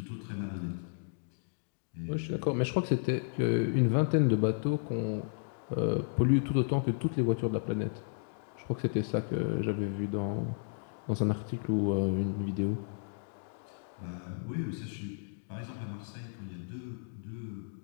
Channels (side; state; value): right; silent; digital silence